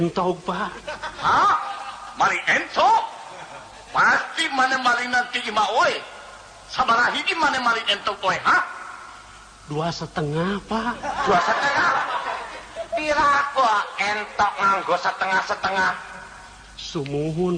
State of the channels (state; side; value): identical; both; correlation 1.00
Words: Pak. Hah? Maling ento? Pasti mana maling nanti ima oi. Sabaraha hiji mana maling ento oi, ha? 2,5 Pak. 2,5. Pira kok entok nganggo setengah-setengah? Sumuhun